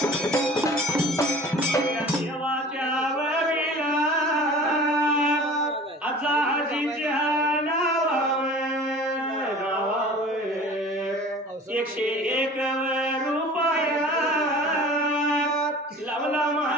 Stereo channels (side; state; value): both; normal; correlation 0.43